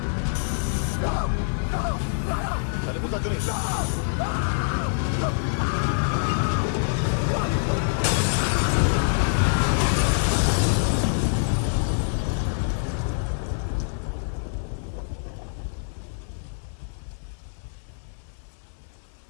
चले बोलता क्यों नहीं?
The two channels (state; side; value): silent; right; digital silence